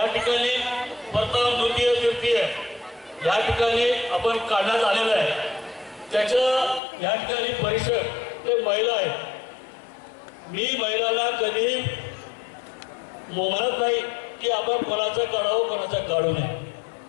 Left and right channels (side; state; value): right; drops out; at 6.8 s